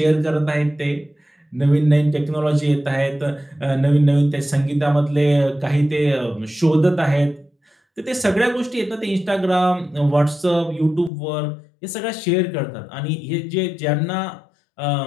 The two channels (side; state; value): right; drops out; at 11.1 s